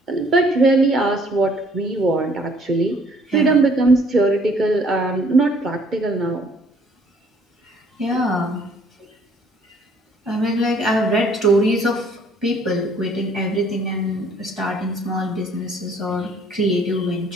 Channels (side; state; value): both; normal; correlation 0.61